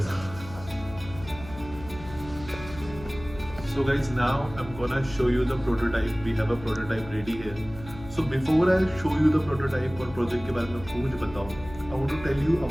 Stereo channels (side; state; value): left; noise; hum, 15 dB below the sound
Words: साथ। So guys, now I'm gonna show you the prototype. We have a prototype ready here. So before I show you the prototype और project के बारे में आपको कुछ बताऊँ, I want to tell you